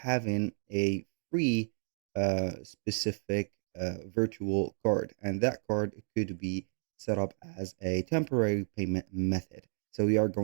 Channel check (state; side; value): silent; left; 56 dB below the other